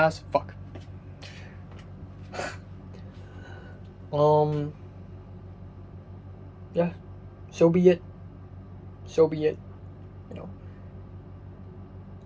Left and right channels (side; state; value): both; identical; correlation 1.00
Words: fuck. Yeah. So be it.